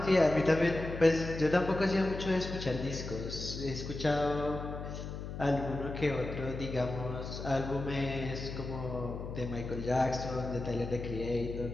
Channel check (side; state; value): left; noise; hum, 8 dB below the sound